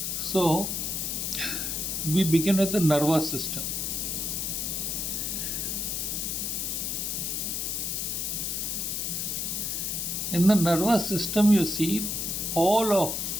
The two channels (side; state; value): left; noise; hiss, 1 dB below the sound